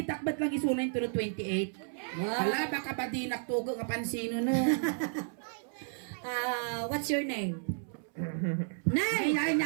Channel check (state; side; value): silent; left; 56 dB below the other